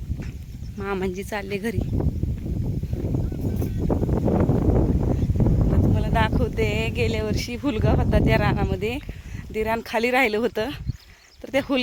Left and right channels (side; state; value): both; identical; correlation 1.00